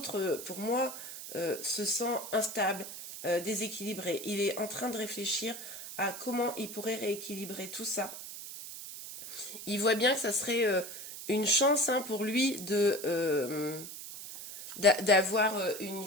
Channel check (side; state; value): right; noise; hiss, 10 dB below the sound